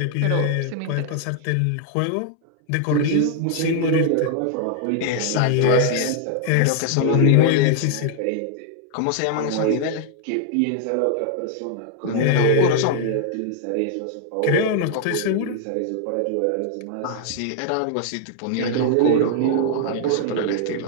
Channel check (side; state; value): both; different; correlation 0.00